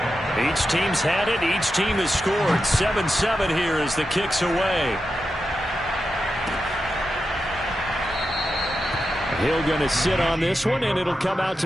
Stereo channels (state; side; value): normal; both; correlation 0.89